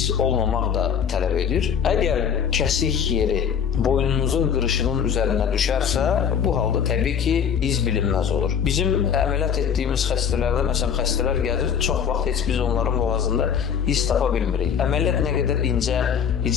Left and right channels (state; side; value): quieter; right; 7.7 dB